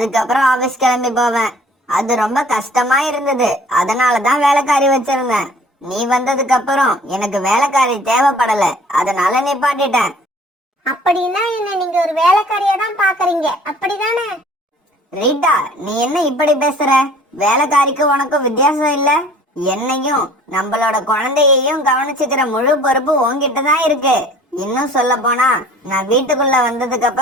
ஆபீஸ் கிளம்பி போவேன். அது ரொம்ப கஷ்டமா இருந்தது. அதனாலதான் வேலைக்காரி வச்சிருந்தேன். நீ வந்ததுக்கு அப்புறம் எனக்கு வேலைக்காரி தேவைப்படல, அதனால நிப்பாட்டிட்டேன். அப்படின்னா என்ன நீங்க ஒரு வேலைக்காரியா தான் பாக்குறீங்க, அப்படிதானே? ரீட்டா, நீ என்ன இப்படி பேசுற? வேலைக்காரிக்கு உனக்கும் வித்தியாசம் இல்ல? என்னையும் நம்மளோட குழந்தையையும் கவனிச்சுக்கிற முழு பொறுப்பு உன்கிட்ட தான் இருக்கு. இன்னும் சொல்ல போனா, நான் வீட்டுக்குள்ள வந்ததுக்கு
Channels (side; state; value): both; normal; correlation 0.51